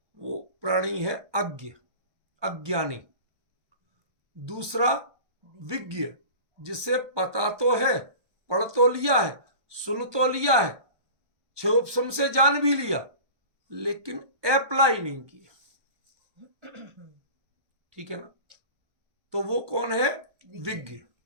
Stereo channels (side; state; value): left; late; 1.2 ms